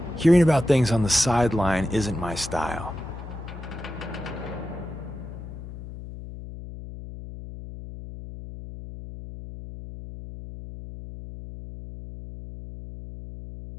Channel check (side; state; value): left; noise; hum, 11 dB below the sound